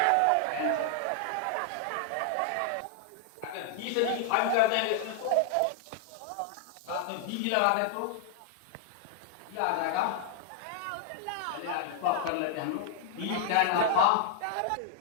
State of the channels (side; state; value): both; different; correlation 0.00